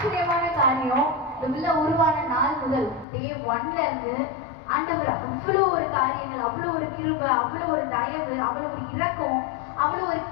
பார்க்கணும், இந்த பிள்ளை உருவான நாள் முதல் டே 1ல இருந்து ஆண்டவர் அவ்வளோ ஒரு காரியங்கள், அவ்வளோ ஒரு கிருபை, அவ்வளோ ஒரு தயவு, அவ்வளோ ஒரு இரக்கம், அவ்வளோ ஒரு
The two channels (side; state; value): right; drops out; at 3.1 s